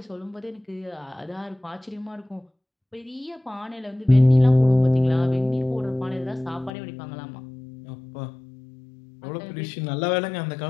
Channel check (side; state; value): right; drops out; at 6.7 s